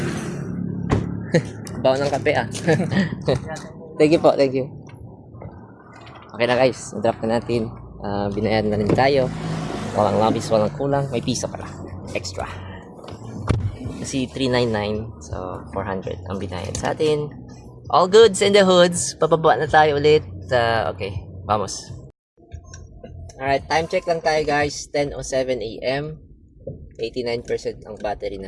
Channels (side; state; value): both; identical; correlation 1.00